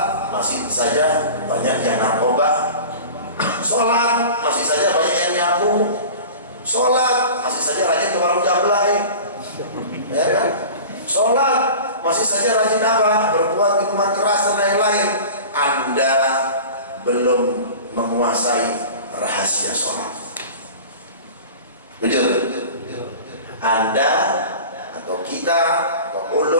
masih saja banyak yang narkoba. Sholat masih saja banyak yang nyabu. Sholat masih saja rajin ke warung jablay, ya kan? Sholat masih saja rajin apa? Berbuat minuman keras dan lain-lain. Anda belum menguasai rahasia sholat. Jujur, Anda atau kita atau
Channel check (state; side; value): inverted; both; correlation -0.37